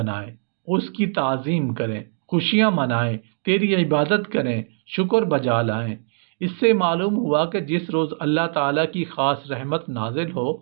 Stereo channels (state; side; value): silent; left; digital silence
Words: اس کی تعظیم کریں، خوشیاں منائیں، تیری عبادت کریں، شکر بجا لائیں۔ اس سے معلوم ہوا کہ جس روز اللہ تعالیٰ کی خاص رحمت نازل ہو